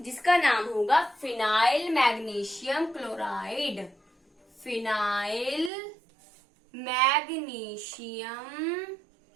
नाम होगा phenyl magnesium chloride. Phenyl magnesium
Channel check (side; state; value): left; drops out; at 5.7 s